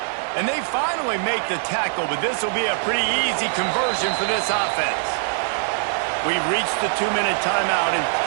And they finally make the tackle, but this will be a pretty easy conversion for this offense. We've reached the 2-minute timeout, and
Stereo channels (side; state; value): left; silent; digital silence